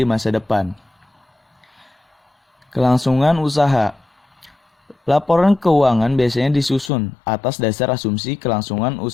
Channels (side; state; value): right; drops out; at 6.9 s